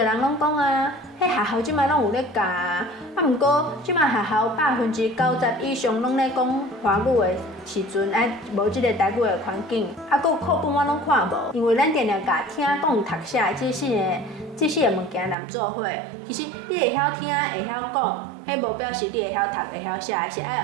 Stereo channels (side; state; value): left; drops out; at 15.4 s